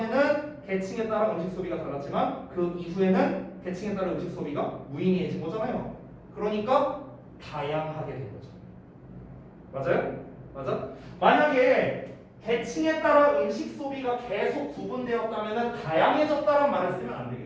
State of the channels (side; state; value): both; identical; correlation 1.00